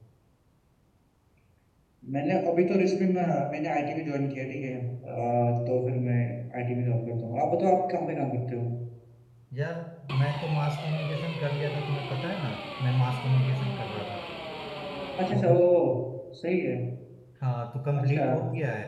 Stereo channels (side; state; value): both; identical; correlation 1.00